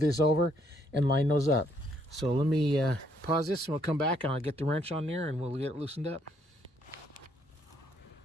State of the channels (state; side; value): normal; both; correlation 0.70